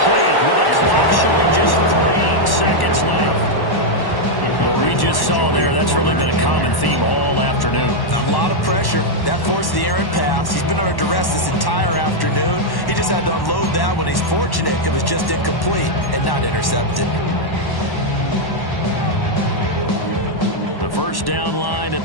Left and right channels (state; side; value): late; right; 1.1 ms